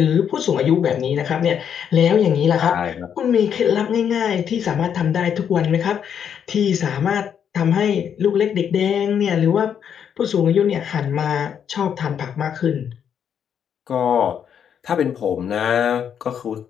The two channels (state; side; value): quieter; right; 8.2 dB